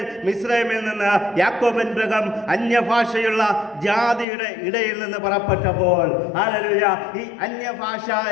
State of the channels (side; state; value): right; drops out; at 4.2 s